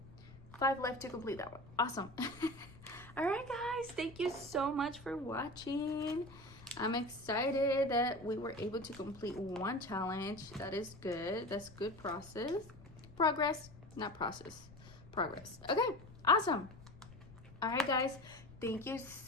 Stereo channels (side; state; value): left; noise; rumble, 19 dB below the sound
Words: 5 left to complete that one. Awesome. All right, guys. Thank you so much for watching. I'm excited that we were able to complete one challenge. That is good. That's good progress, not process. progress. Okay, awesome. All right, guys, thank you